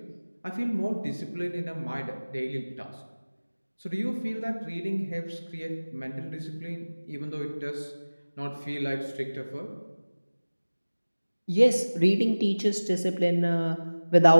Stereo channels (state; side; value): inverted; both; correlation -1.00